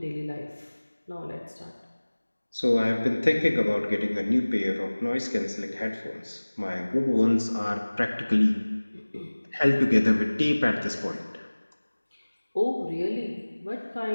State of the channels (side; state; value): both; inverted; correlation -1.00